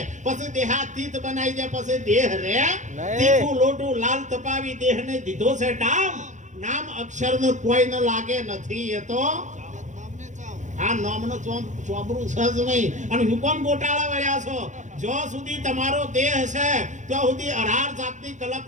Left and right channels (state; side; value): late; left; 0.35 ms